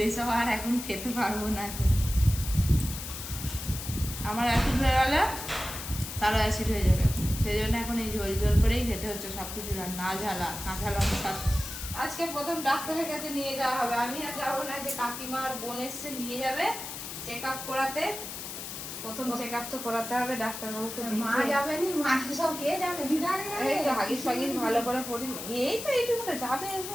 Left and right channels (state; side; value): noise; left; hiss, 8 dB below the sound